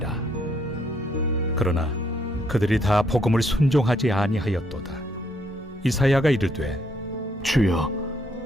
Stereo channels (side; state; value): both; normal; correlation 0.71